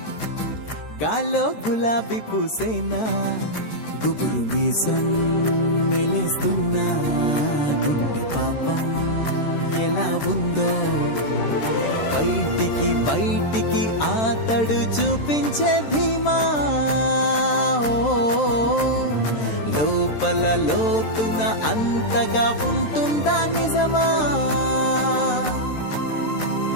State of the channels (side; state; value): right; late; 13 ms